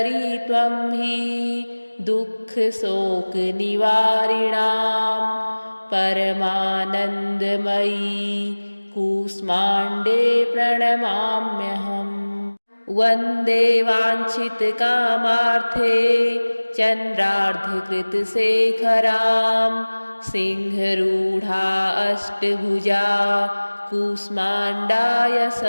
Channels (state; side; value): inverted; both; correlation -1.00